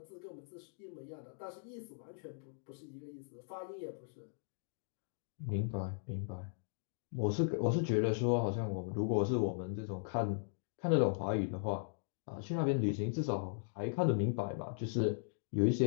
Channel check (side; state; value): right; silent; digital silence